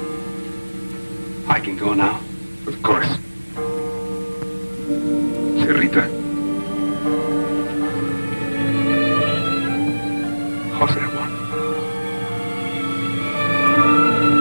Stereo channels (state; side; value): inverted; both; correlation -1.00